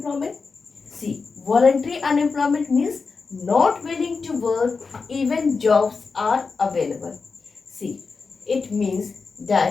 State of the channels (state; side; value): quieter; right; 4.7 dB